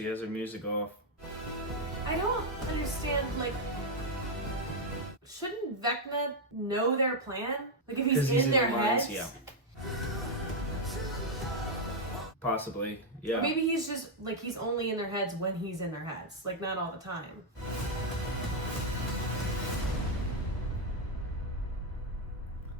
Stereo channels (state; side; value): normal; both; correlation 0.00